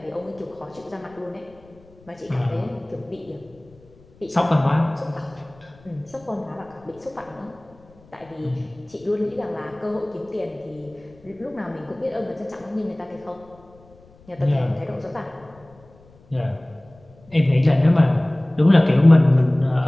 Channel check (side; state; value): left; noise; rumble, 27 dB below the sound